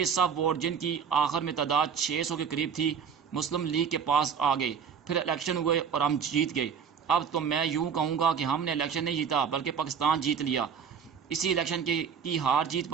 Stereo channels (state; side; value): quieter; left; 7.1 dB